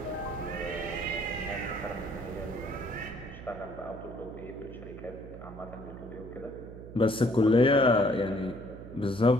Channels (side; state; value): right; noise; hum, 14 dB below the sound